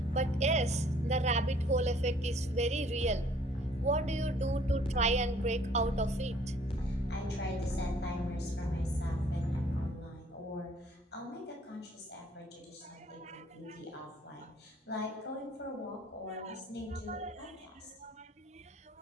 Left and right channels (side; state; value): both; normal; correlation 0.58